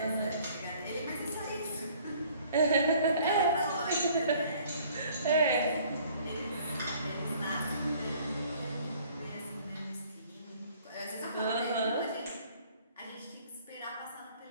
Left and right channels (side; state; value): both; inverted; correlation -0.56